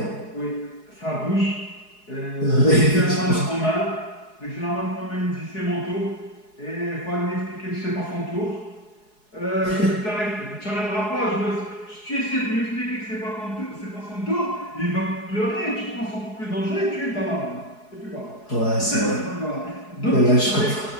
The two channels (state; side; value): late; right; 4.7 ms